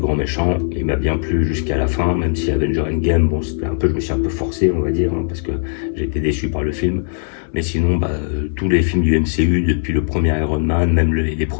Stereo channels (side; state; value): right; silent; 67 dB below the other